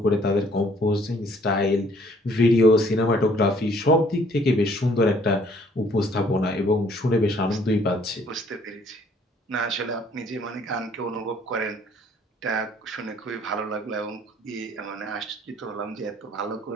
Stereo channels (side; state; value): both; normal; correlation 0.60